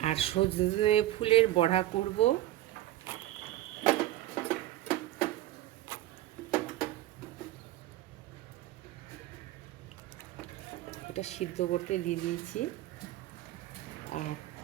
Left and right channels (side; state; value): left; quieter; 14.7 dB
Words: আর সজনে ফুলের বড়া করব। এটা সিদ্ধ করতে দিয়ে দিয়েছি। আর